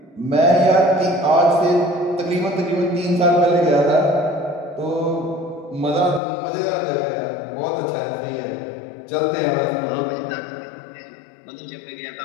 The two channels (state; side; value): drops out; right; at 6.2 s